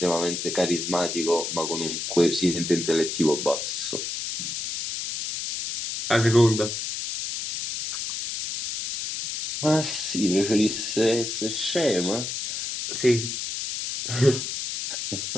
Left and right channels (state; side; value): noise; left; hiss, 4 dB below the sound